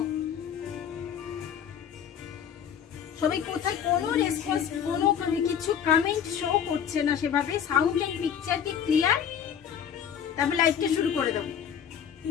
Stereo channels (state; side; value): quieter; right; 8.5 dB